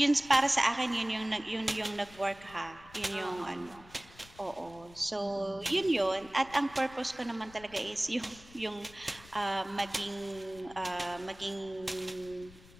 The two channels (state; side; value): noise; left; rumble, 21 dB below the sound